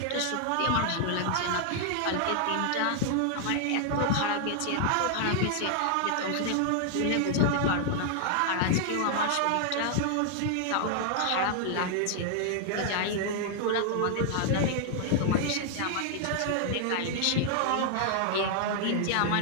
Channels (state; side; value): different; both; correlation 0.00